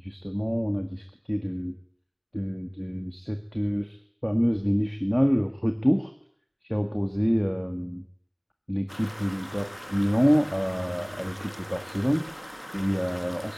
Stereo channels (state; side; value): identical; both; correlation 1.00